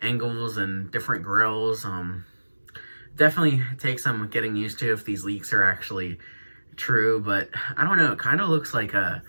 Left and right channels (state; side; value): inverted; both; correlation -1.00